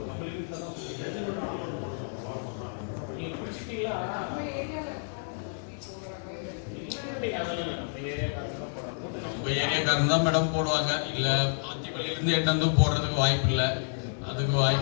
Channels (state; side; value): silent; right; digital silence